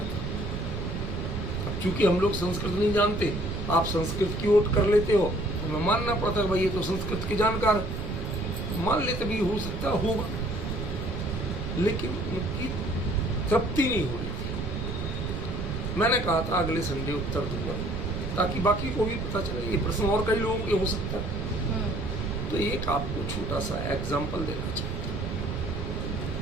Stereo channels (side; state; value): right; noise; rumble, 3 dB below the sound